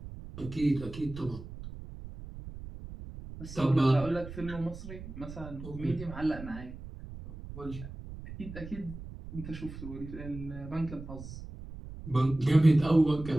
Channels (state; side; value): noise; right; rumble, 12 dB below the sound